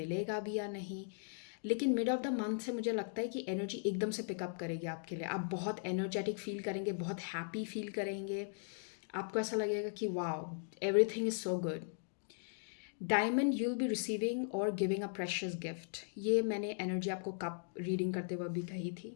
भी या नहीं। लेकिन मिड ऑफ द मंथ से मुझे लगता है कि एनर्जी एकदम से पिकअप करेगी आपके लिए, आप बहुत एनर्जेटिक फील करेंगे, बहुत हैप्पी फील करेंगे, आपको ऐसा लगेगा कि wow everything is so good. Diamond you will be receiving और गिविंग अ प्रेशियस गिफ्ट, ये मैंने एनर्जी आपको कप रीडिंग करते हुए भी कही थी।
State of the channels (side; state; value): right; silent; digital silence